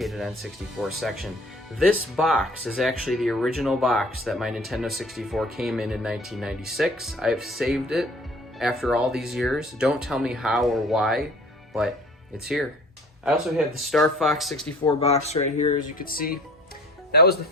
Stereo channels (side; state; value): both; normal; correlation 0.50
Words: N64 section. This box is actually the original box that my Nintendo 64 came in 1996. I have saved it after all these years. Don't tell me how or why, but it's here. I also have the Star Fox 64 box right here, as you can see. That was the